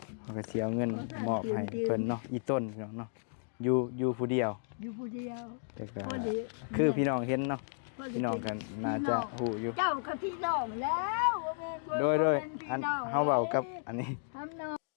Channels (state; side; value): silent; right; digital silence